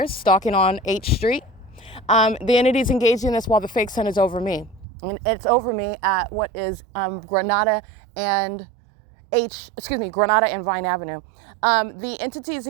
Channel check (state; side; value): drops out; left; at 4.9 s